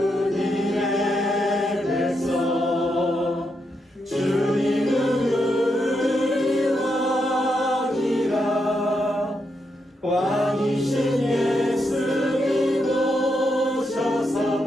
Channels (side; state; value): both; normal; correlation 0.82